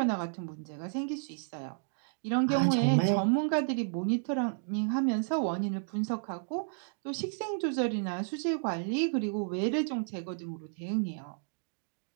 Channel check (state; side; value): silent; left; digital silence